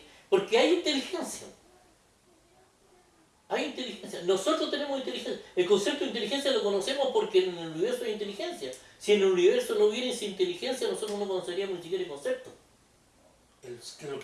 porque hay inteligencia. Hay inteligencia. Nosotros tenemos inteligencia. El concepto de inteligencia lo conocemos porque en el universo hay inteligencia. Si en el universo no hubiera esa inteligencia, nosotros no conoceríamos ni siquiera el concepto. Lo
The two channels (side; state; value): both; identical; correlation 1.00